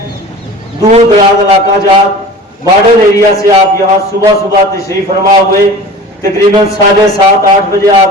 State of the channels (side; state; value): both; normal; correlation 0.39